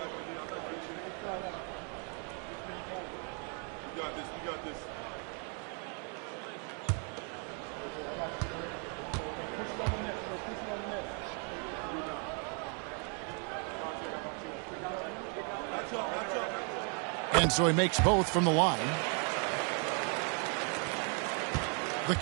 And so he makes both from the line. The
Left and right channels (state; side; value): quieter; left; 39.2 dB